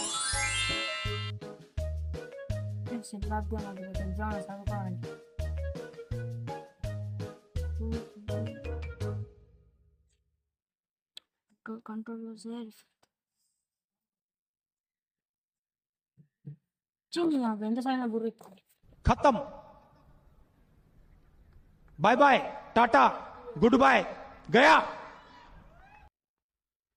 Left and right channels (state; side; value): identical; both; correlation 1.00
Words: చదువుకోవాలి. కంట్రోల్ ఎంత సాయం గురి खत्म bye bye tata good bye गया